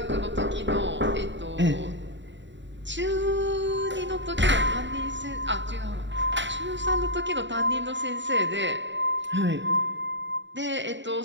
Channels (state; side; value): late; left; 0.53 ms